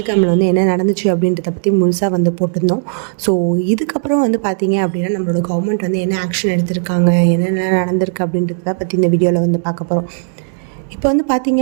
வந்து என்ன நடந்துச்சு அப்படின்றத பற்றி முழுசாக வந்து போட்டிருந்தோம். ஸோ இதுக்கப்புறம் வந்து பார்த்திங்க அப்படின்னா நம்மளோட கவர்மெண்ட் வந்து என்ன ஆக்ஷன் எடுத்திருக்காங்க, என்னென்ன நடந்திருக்கு அப்படின்றத பற்றி இந்த வீடியோவில் வந்து பார்க்க போகிறோம். இப்போ வந்து பார்த்தீங்க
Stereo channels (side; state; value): left; silent; digital silence